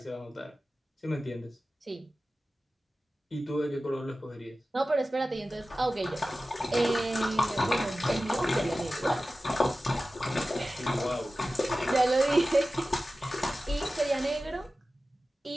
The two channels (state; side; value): normal; both; correlation 0.95